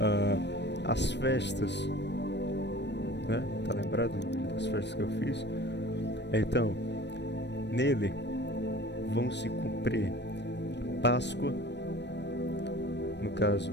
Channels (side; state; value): right; late; 0.50 ms